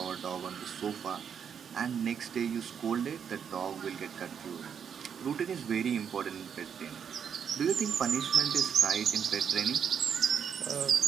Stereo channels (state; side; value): quieter; left; 7.5 dB